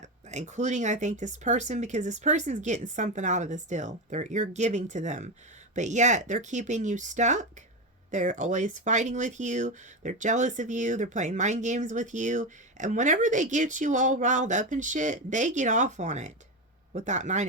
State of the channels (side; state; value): both; normal; correlation 0.16